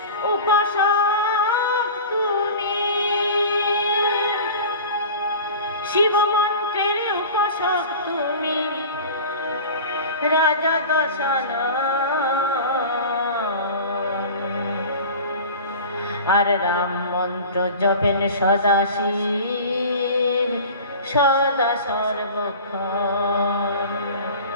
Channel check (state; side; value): inverted; both; correlation -0.37